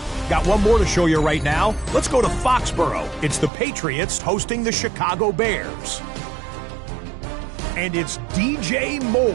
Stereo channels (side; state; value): left; drops out; at 3.5 s